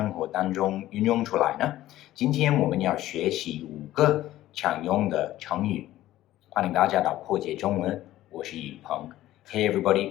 活当中运用出来呢？今天我们要学习5个常用的成语。欢迎大家到破解中文，我是宇鹏。Hey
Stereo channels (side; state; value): right; quieter; 14.7 dB